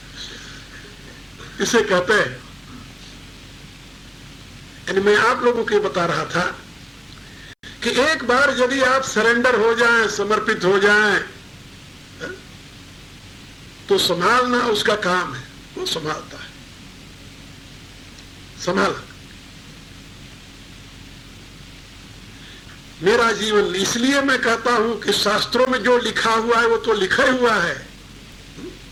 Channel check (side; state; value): both; identical; correlation 1.00